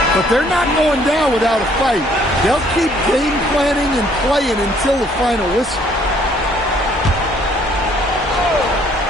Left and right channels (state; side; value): normal; both; correlation 0.62